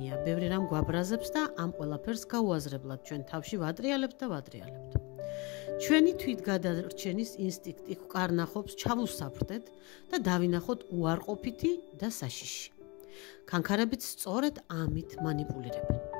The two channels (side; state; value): right; quieter; 27.4 dB